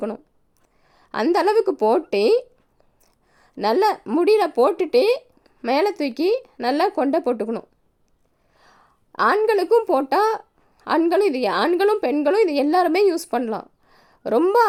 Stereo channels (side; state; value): both; identical; correlation 1.00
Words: அந்தளவுக்கு போட்டு நல்லா முடியில் போட்டுட்டு மேலே தூக்கி நல்லா கொண்டை போட்டுக்கணும். ஆண்களுக்கும் போட்டால் ஆண்களும் பெண்களும் இது எல்லாருமே யூஸ் பண்ணலாம். ரொம்ப